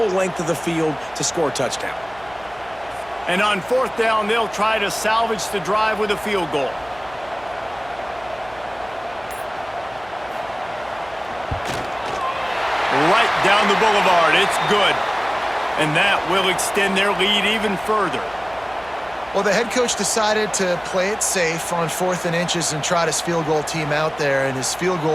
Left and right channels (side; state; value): right; noise; hum, 23 dB below the sound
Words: length of the field to score a touchdown. And on 4th down, they'll try to salvage the drive with a field goal. Right down the boulevard. It's good. And that will extend their lead even further. Well, the head coach decided to play it safe on 4th and inches and trot his field goal team out there, and his field